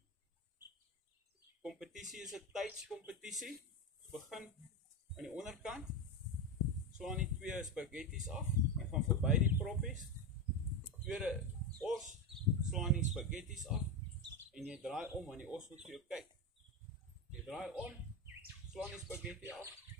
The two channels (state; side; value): normal; both; correlation 0.15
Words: Kompetisie is 'n tydskompetisie. Begin aan die onderkant. Slaan die 2 spaghettis af en gaan verby die proppies. Tweede os, slaan die spaghettis af en jy draai om want die os moet vir jou kyk. Jy draai om, slaan die spaghetti af,